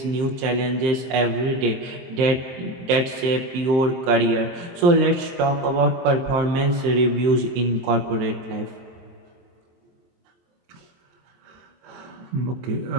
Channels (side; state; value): left; late; 23 ms